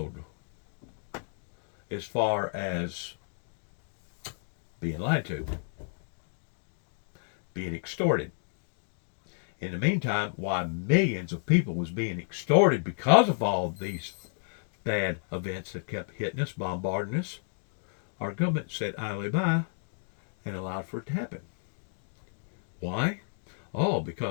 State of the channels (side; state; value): right; silent; 57 dB below the other